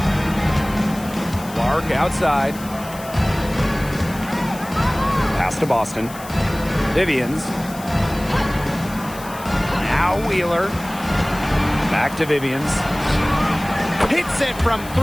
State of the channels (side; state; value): left; noise; hiss, 17 dB below the sound